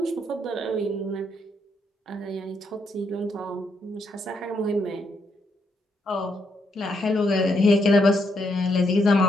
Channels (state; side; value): normal; both; correlation 0.77